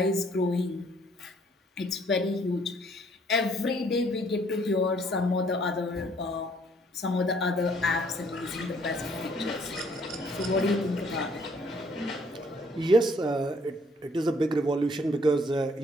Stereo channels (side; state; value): both; normal; correlation 0.63